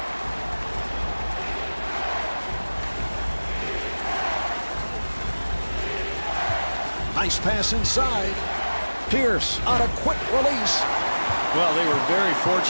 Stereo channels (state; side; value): inverted; both; correlation -1.00